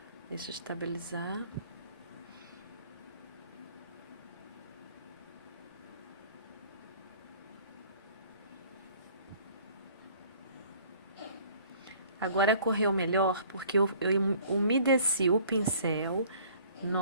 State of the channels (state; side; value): inverted; both; correlation -0.54